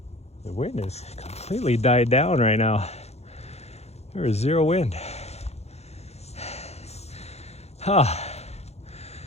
the wind has completely died down right now. There is zero wind. Oh,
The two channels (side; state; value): right; late; 0.31 ms